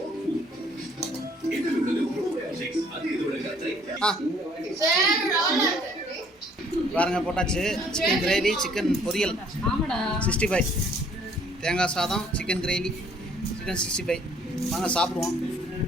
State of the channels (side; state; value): both; normal; correlation 0.60